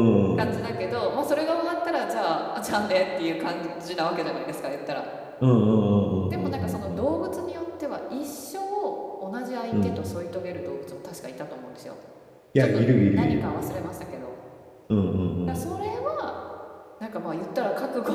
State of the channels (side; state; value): both; identical; correlation 1.00